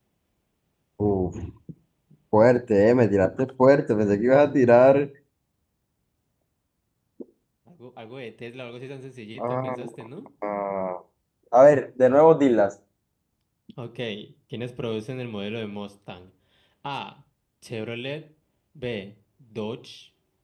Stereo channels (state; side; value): identical; both; correlation 1.00